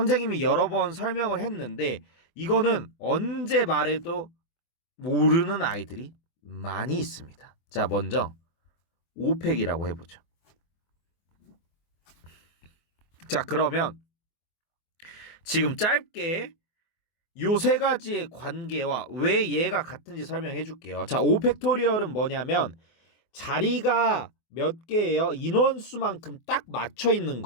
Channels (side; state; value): right; late; 24 ms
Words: 여러 번 설명을 했는데 이거는 언제 말해도 모르는 아이들이 많이 있습니다. 자, 먼저 오펙이라고 해보죠. 자, 그러면 지금 짧게 요 세 가지의 관계와 왜 얘가 같은지 설명해 줄게요. 자, 5팩토리얼은 뭐냐면 자리가 몇 개예요? 인원수만큼 딱 맞춰 있는